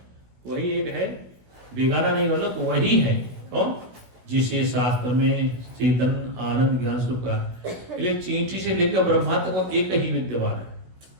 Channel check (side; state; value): left; late; 16 ms